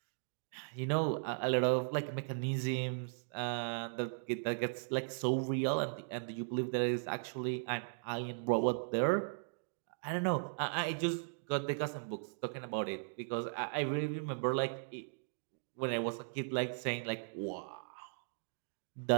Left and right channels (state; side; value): silent; left; digital silence